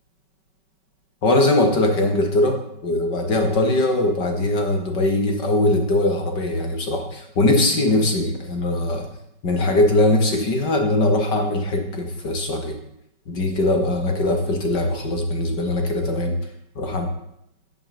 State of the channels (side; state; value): right; late; 5.3 ms